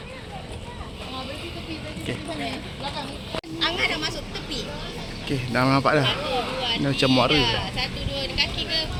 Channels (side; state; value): both; identical; correlation 1.00